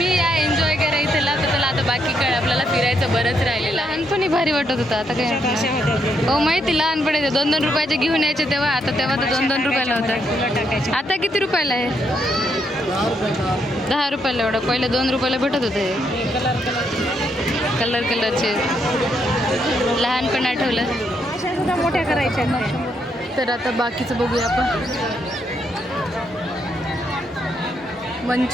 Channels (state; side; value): normal; both; correlation 0.76